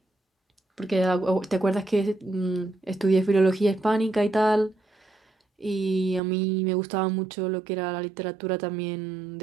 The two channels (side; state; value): left; drops out; at 6.2 s